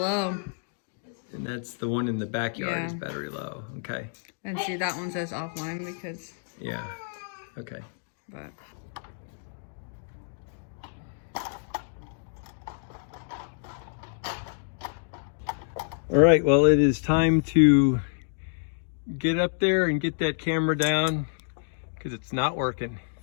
And that's the one in the backyard is Yeah. battery low. Okay. And see, that one says offline because. Yeah. Okay. But. All right. Well, it is time to get up there and get that camera down because it's not working.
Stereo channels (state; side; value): silent; right; digital silence